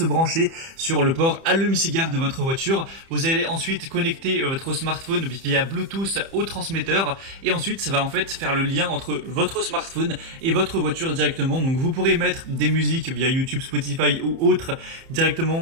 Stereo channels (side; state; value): left; late; 30 ms